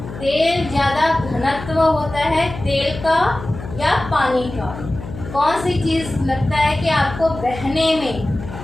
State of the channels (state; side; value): noise; left; hum, 12 dB below the sound